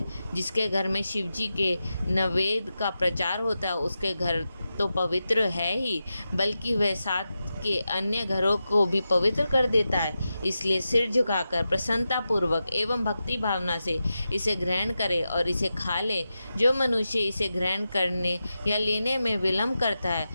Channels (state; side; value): inverted; both; correlation -0.91